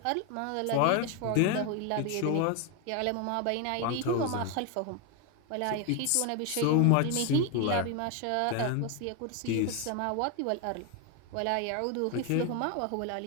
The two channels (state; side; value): different; both; correlation 0.01